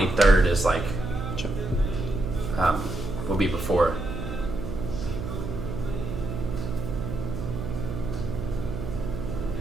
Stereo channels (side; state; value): right; noise; hum, 6 dB below the sound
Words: is like will be before.